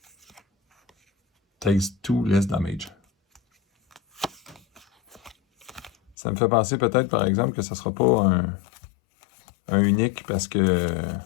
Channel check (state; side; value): drops out; right; at 6.2 s